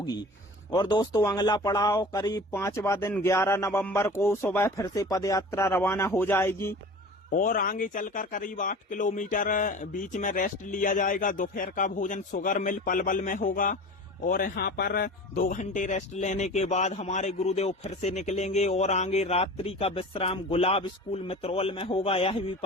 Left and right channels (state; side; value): normal; both; correlation 0.38